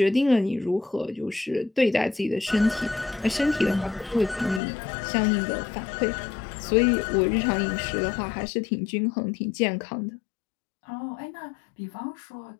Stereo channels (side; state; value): right; drops out; at 4.6 s